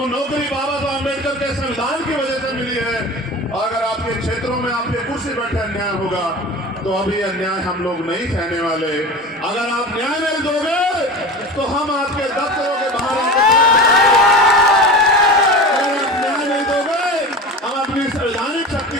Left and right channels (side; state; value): both; normal; correlation 0.31